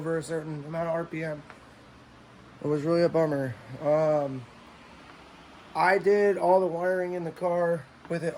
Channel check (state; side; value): identical; both; correlation 1.00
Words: a certain amount of RPM. It was really a bummer. I did all the wiring in the car with it